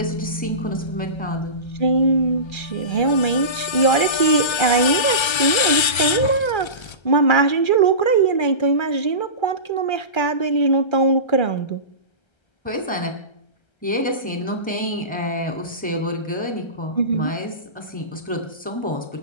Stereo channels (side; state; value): right; late; 1.3 ms